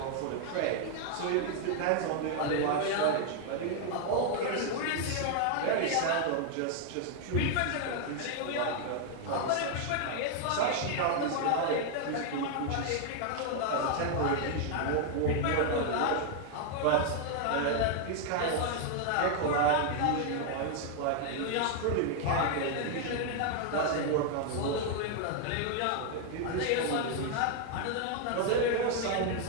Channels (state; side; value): different; both; correlation 0.00